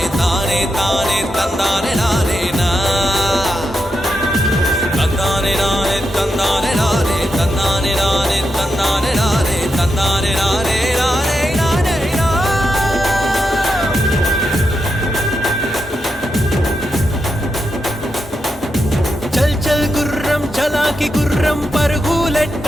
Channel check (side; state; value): both; normal; correlation 0.86